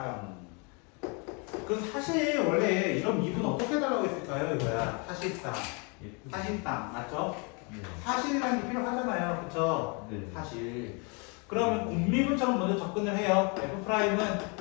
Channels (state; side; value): quieter; right; 33.3 dB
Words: 그 사실 원래 이런 미분 어떻게 달라고 했을까요? 이거야. 사실상. 예쁘죠? 사실상. 맞죠? 네. 사실이라는 게 필요하잖아요. 그쵸? 네. 사실. 그러면 곱미분처럼 먼저 접근을 해요. f'은